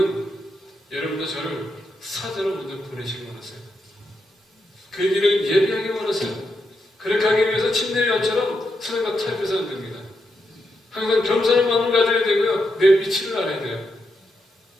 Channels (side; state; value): both; normal; correlation 0.83